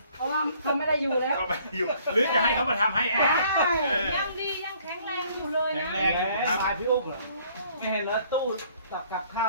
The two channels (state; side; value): inverted; both; correlation -0.61